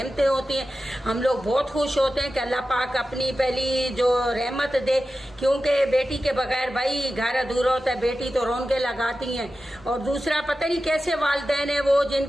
होती हैं। हम लोग बहुत खुश होते हैं कि अल्लाह पाक अपनी पहली जो रहमत दे, क्योंकि बेटी के बगैर भाई घर अधूरा होता है। बेटी तो रौनकें लगाती हैं। और दूसरा, पता नहीं कैसे वालिदैन है वो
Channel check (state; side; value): normal; both; correlation 0.93